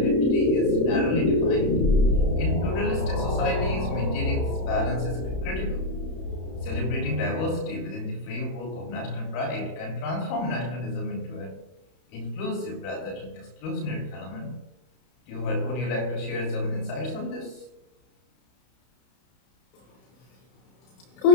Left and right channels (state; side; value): late; right; 31 ms